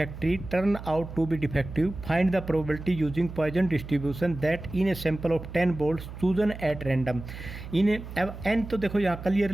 turn out to be defective. Find the probability using Poisson distribution that in a sample of 10 bolts chosen at random. अब n तो देखो यहाँ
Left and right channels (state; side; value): noise; right; hum, 11 dB below the sound